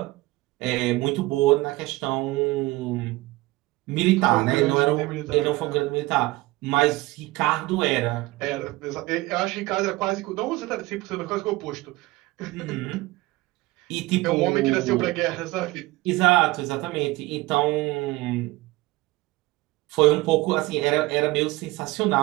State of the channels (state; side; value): quieter; left; 20.4 dB